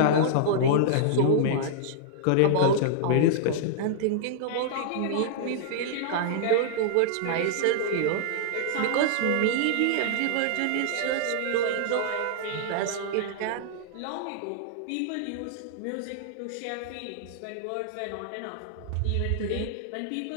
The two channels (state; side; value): different; both; correlation -0.01